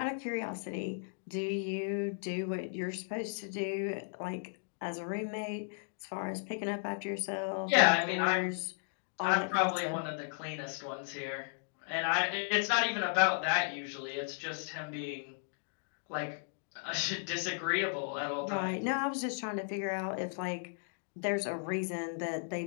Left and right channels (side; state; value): right; silent; digital silence